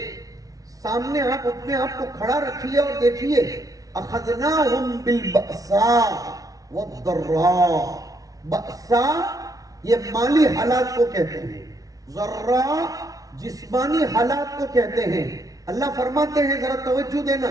سامنے آپ اپنے آپ کو کھڑا رکھیے اور دیکھیے، اخذناہم بالبأساء والضراء. بأساء یہ مالی حالات کو کہتے ہیں، ضراء جسمانی حالات کو کہتے ہیں. اللہ فرماتے ہیں، ذرا توجہ دینا،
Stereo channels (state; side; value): late; left; 0.18 ms